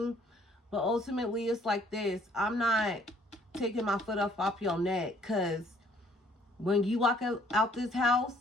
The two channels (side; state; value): both; normal; correlation 0.61